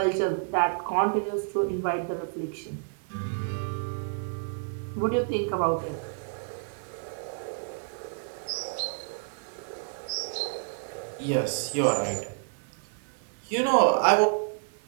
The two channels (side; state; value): left; silent; digital silence